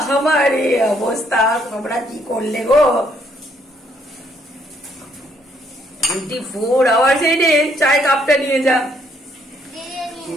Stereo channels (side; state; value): both; normal; correlation 0.69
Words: हमारे अवस्था, তোমরা কি করলে গো? 24 আওয়ার্স এনে চায় কাপটা নিয়ে যা।